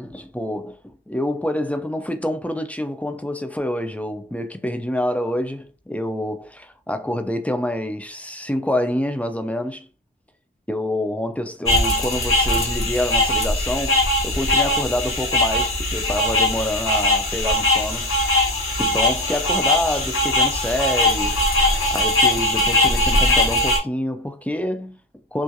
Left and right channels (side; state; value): both; normal; correlation 0.27